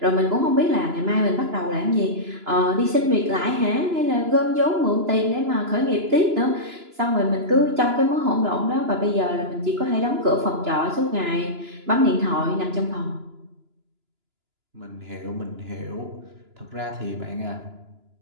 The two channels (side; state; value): left; late; 2.9 ms